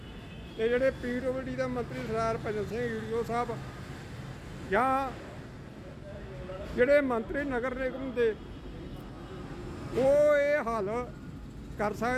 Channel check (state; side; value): identical; both; correlation 1.00